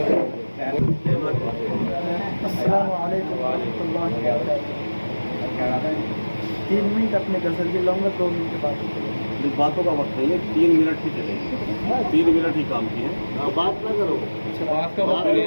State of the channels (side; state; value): both; inverted; correlation -1.00